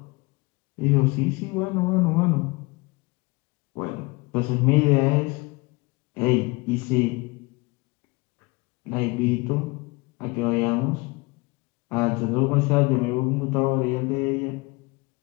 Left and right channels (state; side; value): quieter; right; 25.4 dB